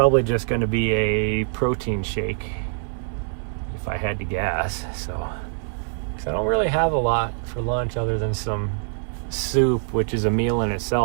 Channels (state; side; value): silent; left; 56 dB below the other